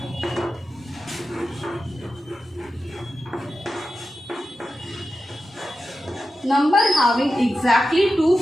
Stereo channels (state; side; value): normal; both; correlation 0.92